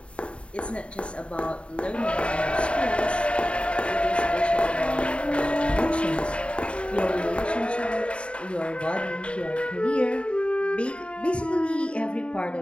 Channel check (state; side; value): late; right; 0.059 ms